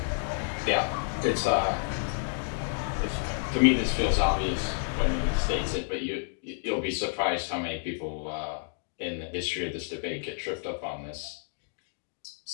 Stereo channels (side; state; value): right; silent; digital silence